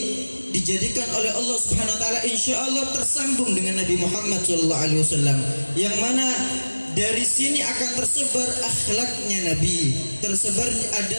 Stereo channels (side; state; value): both; inverted; correlation -1.00